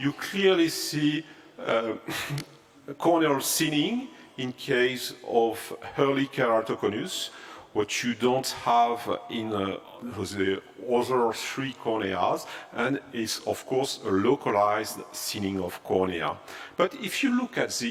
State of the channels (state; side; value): identical; both; correlation 1.00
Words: clearly see corneal thinning in case of early keratoconus, what you don't have in the other three corneas, and is of course a localized thinning of cornea. But if you look at